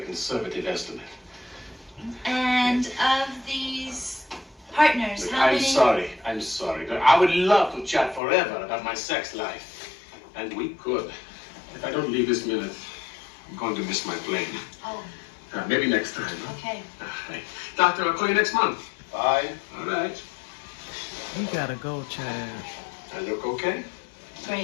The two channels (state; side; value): drops out; right; at 8.2 s